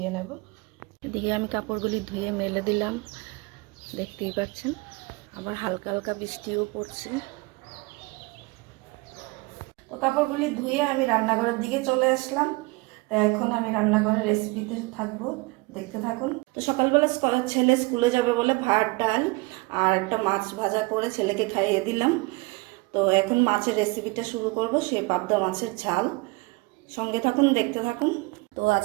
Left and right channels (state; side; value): quieter; left; 25.2 dB